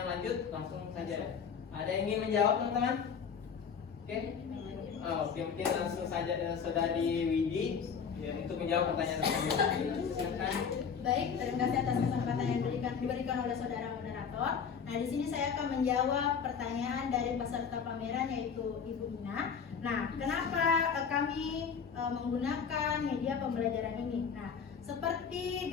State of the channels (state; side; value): quieter; right; 6.6 dB